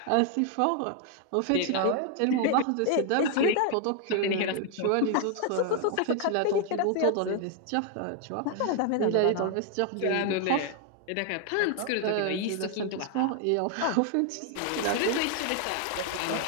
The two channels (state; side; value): different; both; correlation 0.00